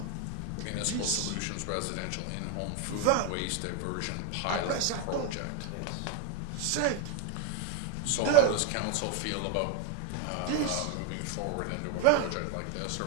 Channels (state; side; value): different; both; correlation 0.01